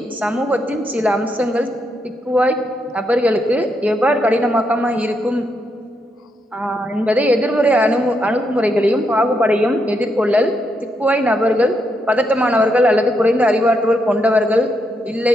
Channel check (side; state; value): both; normal; correlation 0.79